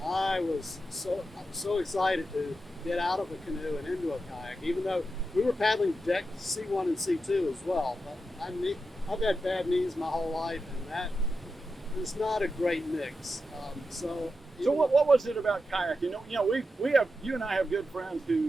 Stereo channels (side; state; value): both; normal; correlation 0.89